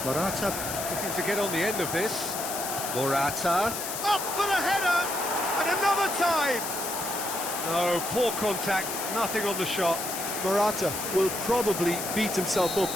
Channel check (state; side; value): noise; left; hiss, 5 dB below the sound